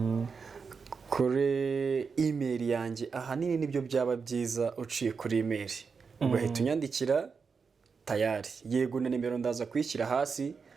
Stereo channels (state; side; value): quieter; left; 5.4 dB